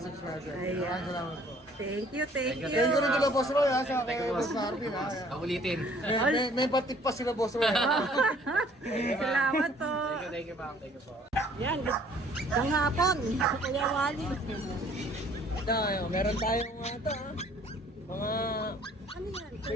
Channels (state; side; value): normal; both; correlation 0.57